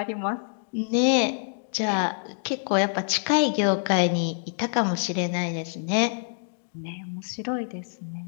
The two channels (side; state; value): right; silent; digital silence